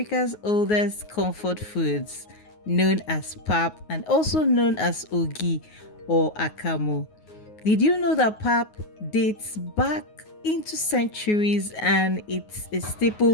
oldest comfort foods, known as pap and also known as ogi or akamu. Did you know that pap dates back into centuries and it's a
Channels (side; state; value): right; late; 9.5 ms